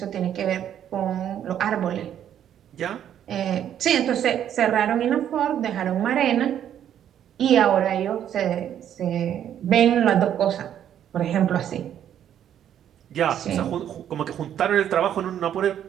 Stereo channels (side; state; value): left; quieter; 10.1 dB